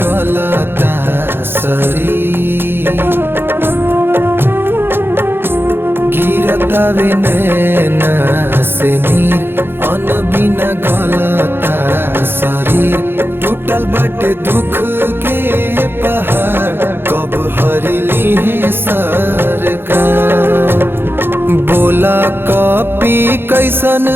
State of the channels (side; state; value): left; late; 0.10 ms